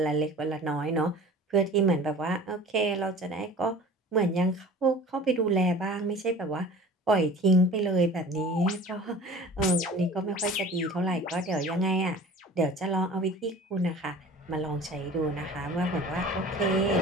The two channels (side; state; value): both; normal; correlation 0.42